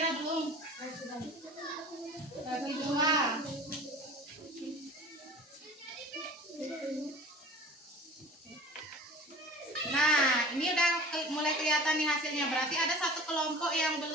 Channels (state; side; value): normal; both; correlation 0.41